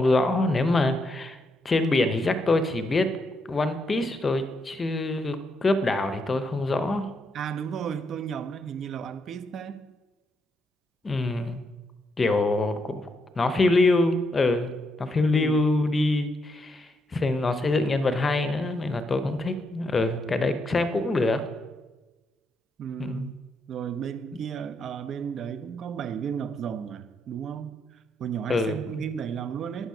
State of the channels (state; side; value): normal; both; correlation 0.79